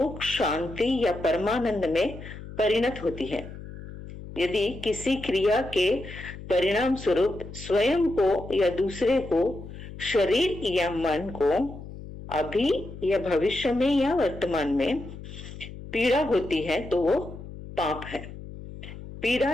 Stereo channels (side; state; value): left; noise; hum, 13 dB below the sound